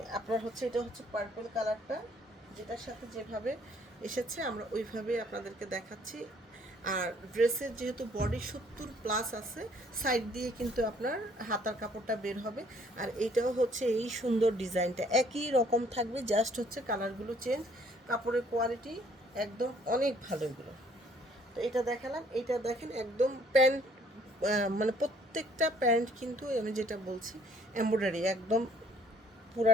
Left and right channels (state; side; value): normal; both; correlation 0.61